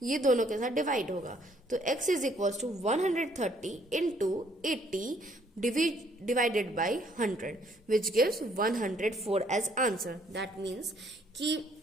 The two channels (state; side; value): normal; both; correlation 0.65